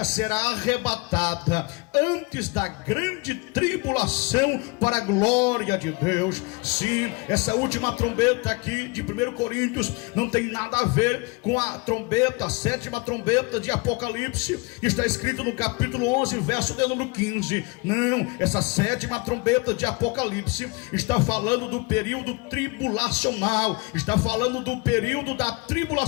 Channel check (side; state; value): right; quieter; 27.1 dB